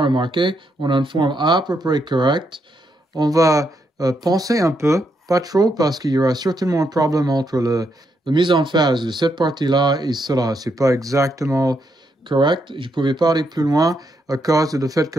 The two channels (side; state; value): both; normal; correlation 0.79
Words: remarquer, on a une forme à peu près correcte. On va penser un peu, pas trop, parce qu'il y aura certainement un problème entre la mise en phase de cette partie-là et cela. C'est pas exactement correct. Je ne pouvais pas aller plus loin à cause du fait que